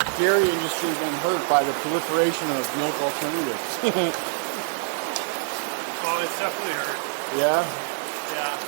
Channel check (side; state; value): left; silent; 62 dB below the other